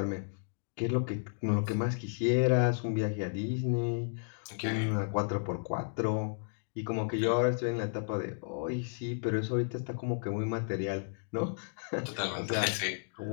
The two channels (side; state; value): right; silent; digital silence